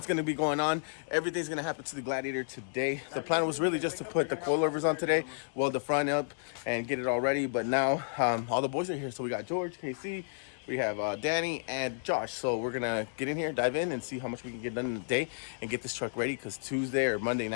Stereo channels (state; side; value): silent; right; digital silence